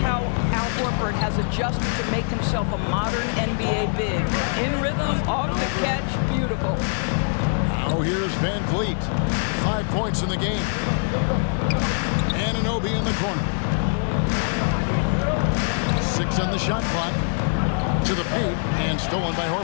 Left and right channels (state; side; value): silent; right; 57 dB below the other